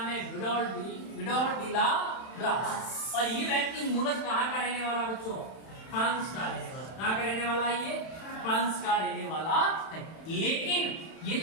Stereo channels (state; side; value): late; right; 31 ms